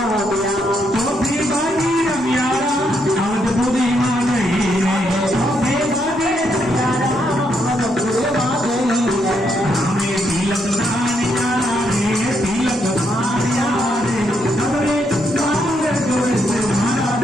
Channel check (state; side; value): normal; both; correlation 0.77